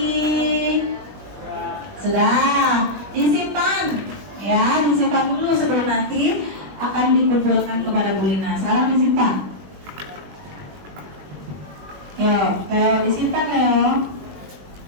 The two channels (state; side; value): late; left; 21 ms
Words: Sudah, disimpan. Ya, disimpan dulu sebelum nanti akan dikumpulkan kepada Bu Lina. Sekarang disimpan. Leo, disimpan Leo.